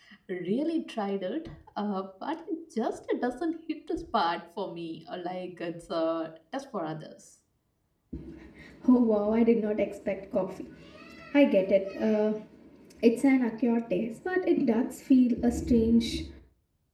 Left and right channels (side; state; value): both; identical; correlation 1.00